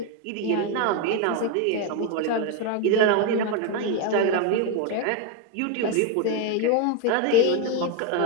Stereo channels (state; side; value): different; both; correlation 0.02